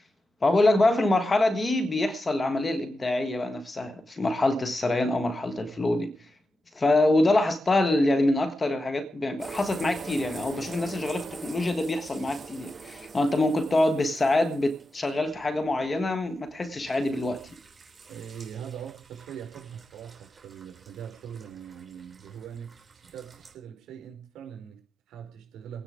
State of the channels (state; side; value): normal; both; correlation 0.90